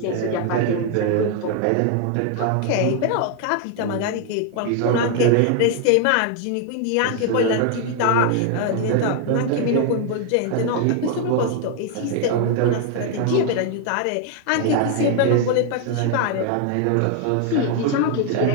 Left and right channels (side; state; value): both; different; correlation 0.00